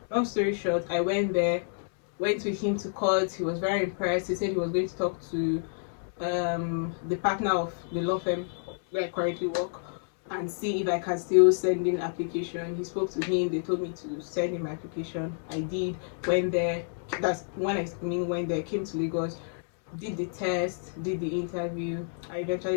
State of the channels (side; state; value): right; silent; digital silence